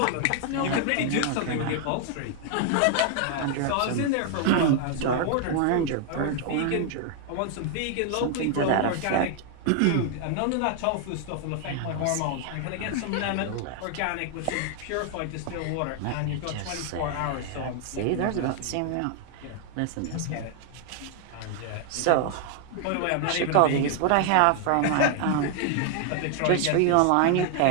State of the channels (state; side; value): different; both; correlation 0.00